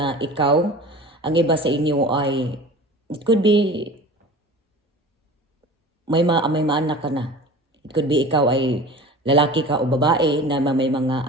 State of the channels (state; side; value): normal; both; correlation 0.38